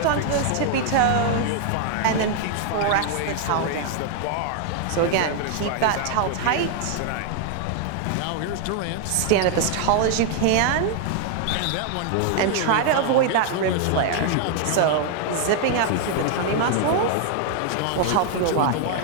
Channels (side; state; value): both; different; correlation 0.00